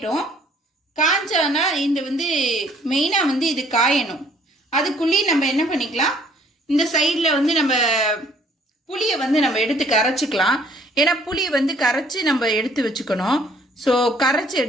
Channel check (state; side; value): normal; both; correlation 0.60